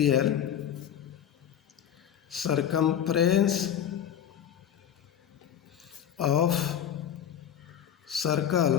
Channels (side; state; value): right; quieter; 9.6 dB